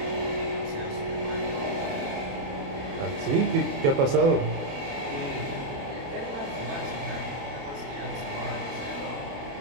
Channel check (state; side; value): late; left; 28 ms